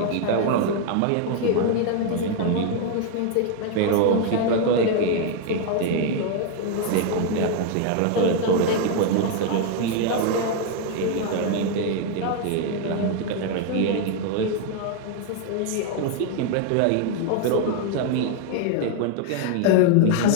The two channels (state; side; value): different; both; correlation 0.01